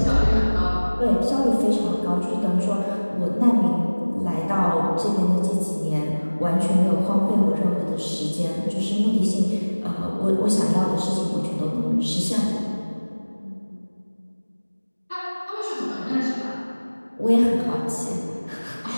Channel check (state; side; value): inverted; both; correlation -1.00